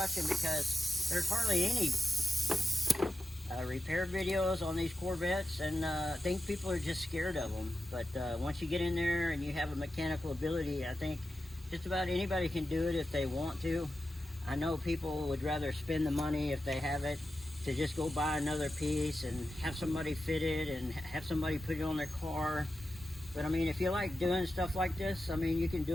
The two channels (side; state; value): both; normal; correlation 0.91